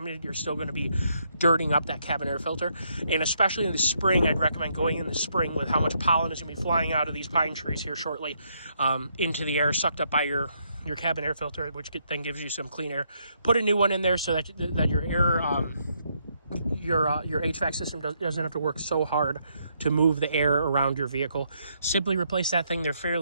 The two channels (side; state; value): both; inverted; correlation -0.75